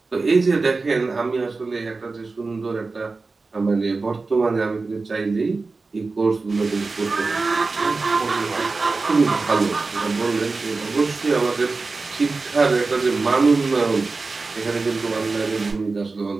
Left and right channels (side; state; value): left; quieter; 3.9 dB